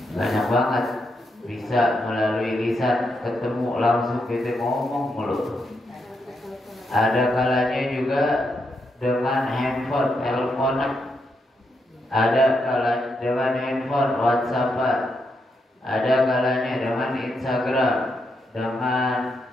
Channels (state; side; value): normal; both; correlation 0.82